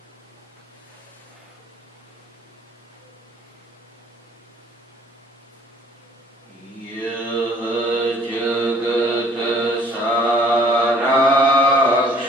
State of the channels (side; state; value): both; normal; correlation 0.56